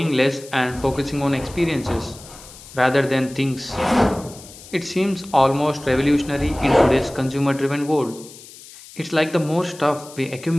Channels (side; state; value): left; noise; hiss, 19 dB below the sound